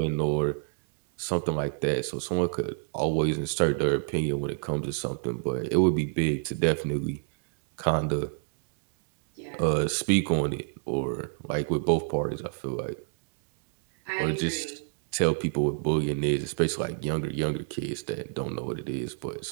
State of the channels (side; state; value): left; silent; digital silence